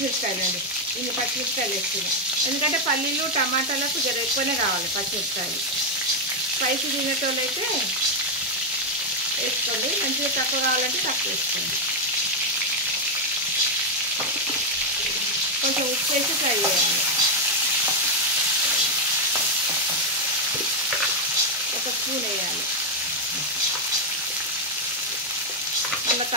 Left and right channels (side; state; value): both; normal; correlation 0.01